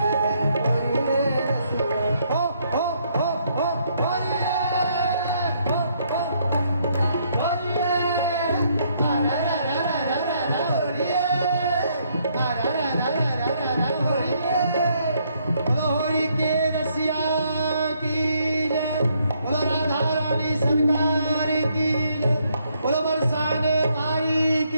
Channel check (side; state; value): both; inverted; correlation -0.71